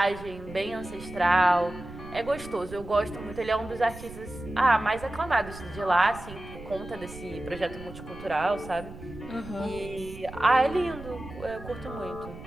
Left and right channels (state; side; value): noise; right; rumble, 14 dB below the sound